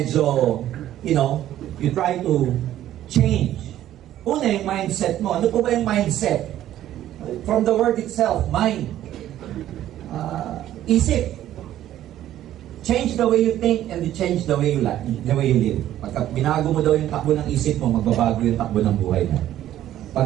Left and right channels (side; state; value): left; quieter; 12.6 dB